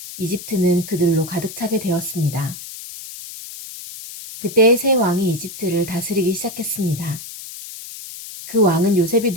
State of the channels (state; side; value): noise; left; hiss, 12 dB below the sound